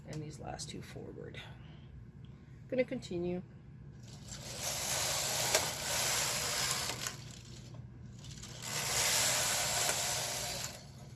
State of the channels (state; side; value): identical; both; correlation 1.00